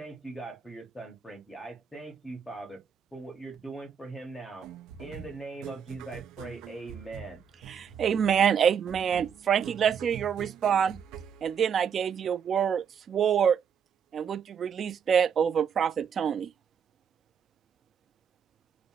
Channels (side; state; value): left; quieter; 7.5 dB